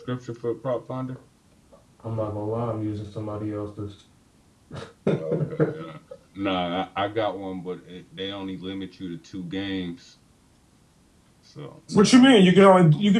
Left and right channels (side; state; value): both; identical; correlation 1.00